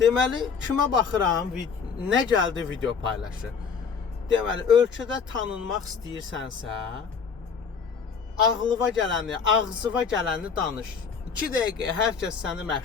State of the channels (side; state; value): right; quieter; 6.0 dB